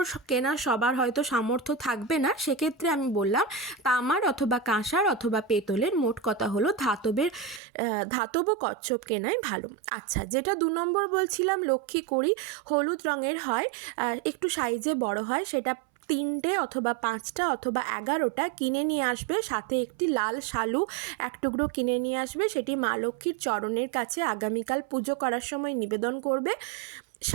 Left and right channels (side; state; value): left; drops out; at 7.6 s